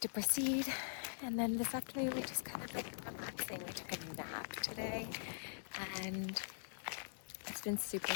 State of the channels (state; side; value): silent; right; digital silence